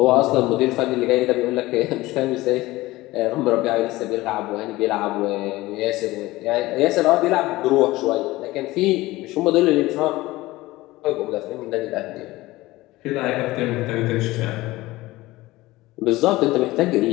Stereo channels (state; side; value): quieter; right; 18.8 dB